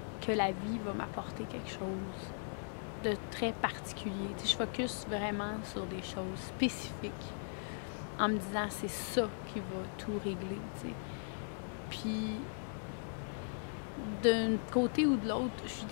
que la vie va m'apporter quelque chose de très particulier. Tu sais, je focus vraiment sur des choses spécifiques en me disant c'est ça qui va tout régler, tu sais. Puis d'un côté ou de l'autre, je suis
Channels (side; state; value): right; silent; digital silence